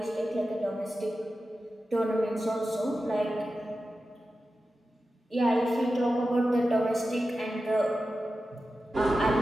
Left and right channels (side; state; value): both; normal; correlation 0.93